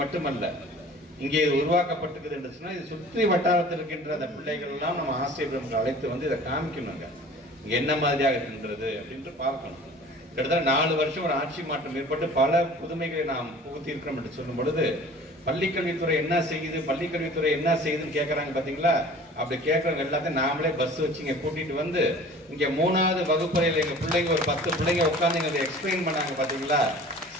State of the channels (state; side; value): normal; both; correlation 0.45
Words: மட்டுமல்ல இங்கே இது உருவாக்கப்பட்டிருக்குது என்று சொன்னால் இது சுற்றி வட்டாரத்தில் இருக்கின்ற அந்த பிள்ளைகள் எல்லாம் நம்ம ஆசிரியர்களுக்கு அழைத்து வந்து இதை காமிக்கணுங்க இங்கே என்ன மாதிரியாக இருக்கின்றது அப்படின்ட்டு பார்க்கணும். கிட்டத்தட்ட 4 வருஷம் ஒரு ஆட்சி மாற்றம் ஏற்பட்டு பல புதுமைகளை நாம் புகுத்தி இருக்கிறோம் என்று சொல்லும் பொழுது பள்ளிக்கல்வித்துறை என்ன செய்யுது பள்ளிக்கல்வித்துறை என்ன செய்யுதுன்னு கேட்கறாங்க பாத்தீங்களா. அப்படி கேட்கறவங்க எல்லாத்தையும் நாமளே பஸ் வச்சு இங்க கூட்டிட்டு வந்து இங்க 3வது வகுப்பறையில் எங்க பிள்ளைங்க ஒரு 10 பிள்ளைங்க உட்காந்து இங்க எக்ஸ்பிளைன் பண்ணாங்க பாத்தீங்களா.